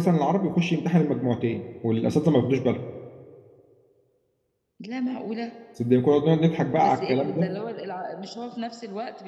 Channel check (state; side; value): identical; both; correlation 1.00